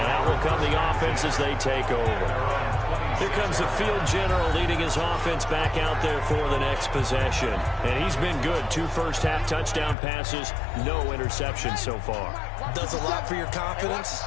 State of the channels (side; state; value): right; drops out; at 10.0 s